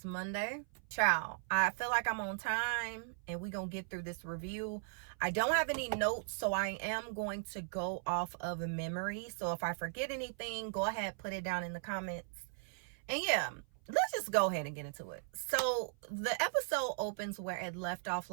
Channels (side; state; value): left; silent; 53 dB below the other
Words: Monday. Ciao. I feel like I'm on time and we're going to get through this review. I don't have any notes, so I am going to go off of a memory. So if I forget anything, go ahead, put it down in the comments. And yeah, let's just go ahead and get into it. So the episode opens where it left off